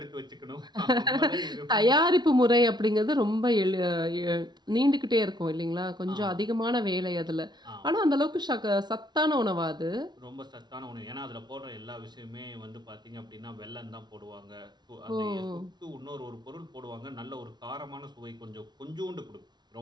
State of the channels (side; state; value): left; late; 0.20 ms